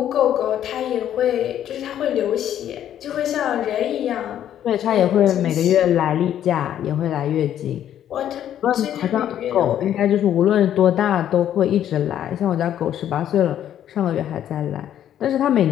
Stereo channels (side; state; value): right; quieter; 10.7 dB